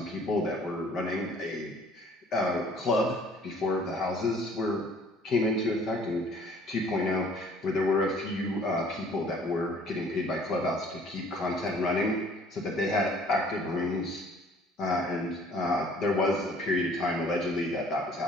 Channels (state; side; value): normal; both; correlation 0.55